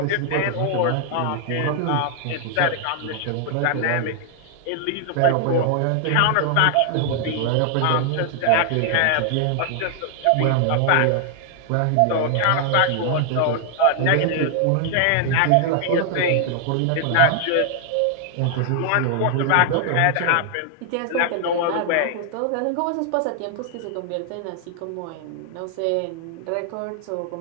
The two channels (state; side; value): different; both; correlation 0.00